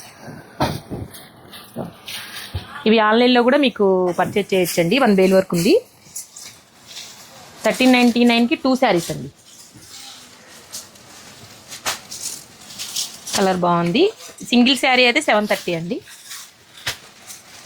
ఇవి ఆన్లైన్లో కూడా మీకు పర్చేజ్ చేయొచ్చండి. 1000 వరకు ఉంది. 1399కి 2 శారీస్ అండి. కలర్ బాగుంది. సింగిల్ శారీ అయితే 730 అండి.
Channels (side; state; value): both; identical; correlation 1.00